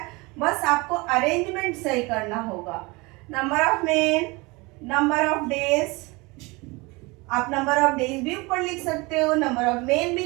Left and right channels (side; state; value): left; quieter; 25.2 dB